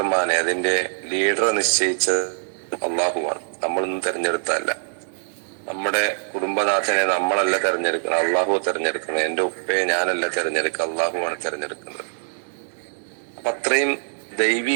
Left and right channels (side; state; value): left; silent; 63 dB below the other